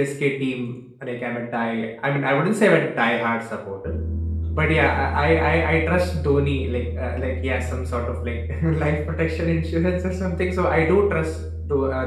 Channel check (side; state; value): both; identical; correlation 1.00